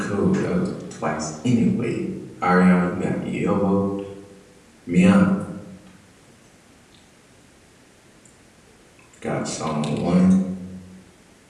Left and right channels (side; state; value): both; identical; correlation 1.00